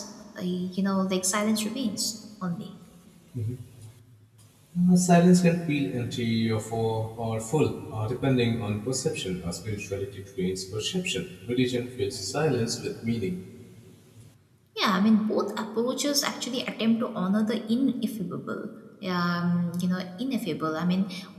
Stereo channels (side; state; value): both; identical; correlation 1.00